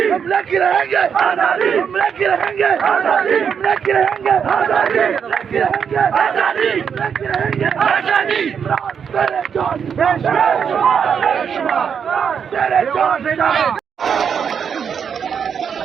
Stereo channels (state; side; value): quieter; left; 7.2 dB